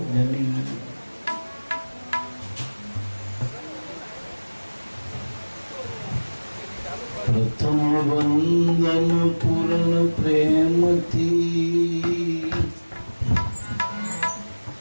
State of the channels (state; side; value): inverted; both; correlation -1.00